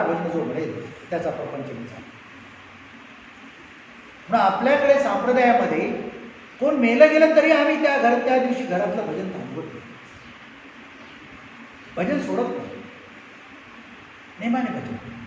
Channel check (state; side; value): identical; both; correlation 1.00